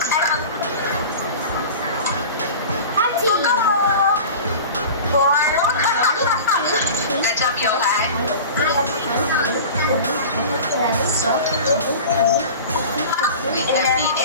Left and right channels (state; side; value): inverted; both; correlation -0.36